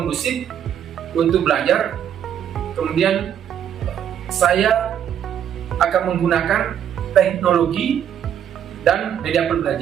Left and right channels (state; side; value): quieter; left; 9.4 dB